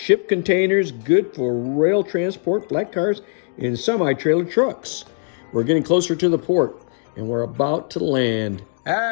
containers, good for rail transport, flat cars, and semi-trailer trucks. We're getting closer to the port, and we're about to land.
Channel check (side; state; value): right; silent; digital silence